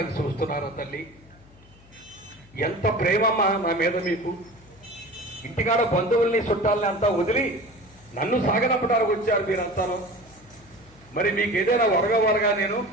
చూస్తున్నారా తల్లి? ఎంత ప్రేమమ్మా నా మీద మీకు. ఇంటికాడ బంధువుల్ని చుట్టాలని అంతా వదిలి నన్ను సాగనంపడానికి వచ్చారు మీరంతాను. మరి మీకు ఏదైనా వరగా నేను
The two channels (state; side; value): noise; left; hum, 26 dB below the sound